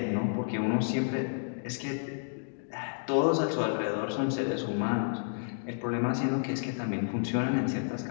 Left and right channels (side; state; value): right; silent; digital silence